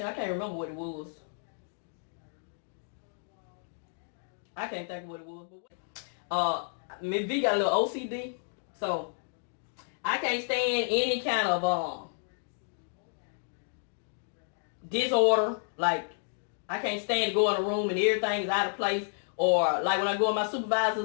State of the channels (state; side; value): silent; right; digital silence